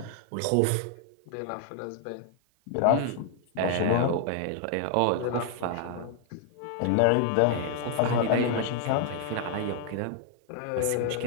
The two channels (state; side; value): different; both; correlation 0.00